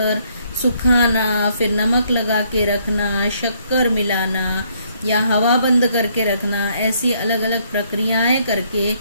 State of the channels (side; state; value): both; inverted; correlation -0.68